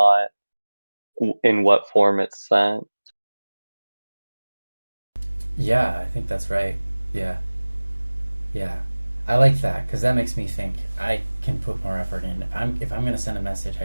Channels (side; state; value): both; inverted; correlation -1.00